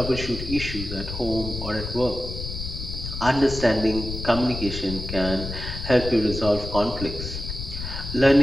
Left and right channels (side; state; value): left; noise; rumble, 7 dB below the sound